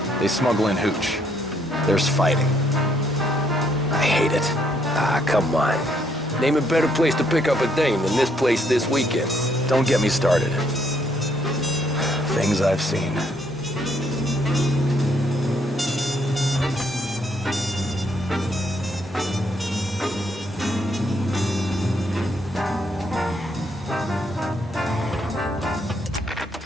They smuggle in hooch. There's fighting. I hate it. Ah, come on. Name a better place to pick up a dame than this place this weekend. Don't get me started. Things I've seen.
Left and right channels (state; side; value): normal; both; correlation 0.71